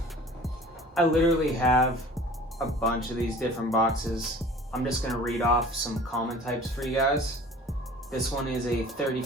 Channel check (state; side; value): normal; both; correlation 0.45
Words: I literally have a bunch of these different boxes. I'm just going to read off some common types for you guys. This one is a